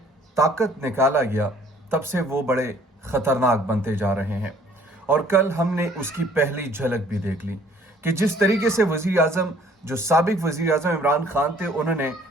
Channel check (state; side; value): normal; both; correlation 0.57